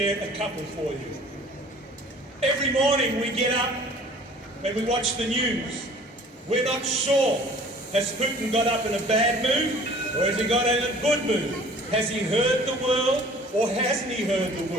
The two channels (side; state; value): both; normal; correlation 0.50